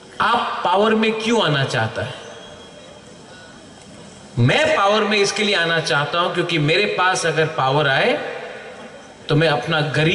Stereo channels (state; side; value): identical; both; correlation 1.00